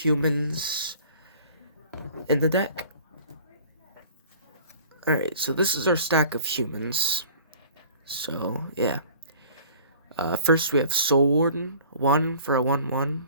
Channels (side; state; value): both; inverted; correlation -0.48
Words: in the deck. Alright, so this is our stack of humans. So, yeah. First we have Soul Warden, 1 for a 1/1.